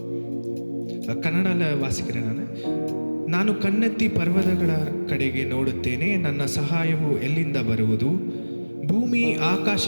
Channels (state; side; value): inverted; both; correlation -1.00